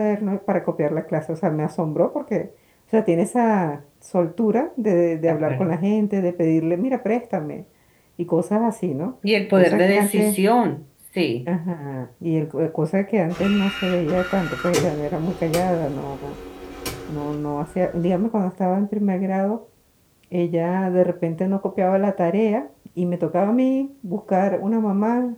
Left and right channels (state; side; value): identical; both; correlation 1.00